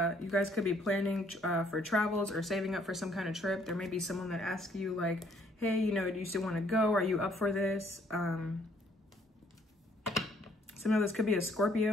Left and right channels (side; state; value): both; normal; correlation 0.65